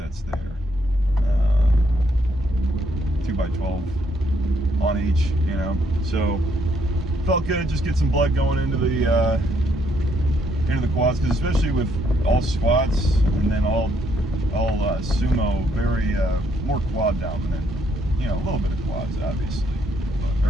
there, 2x12 on each, so felt good. Just get some blood going into the quads, because especially with all squats and then all sumo, very more quad dominant. A little bit of quads, obviously, or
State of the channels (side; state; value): both; normal; correlation 0.71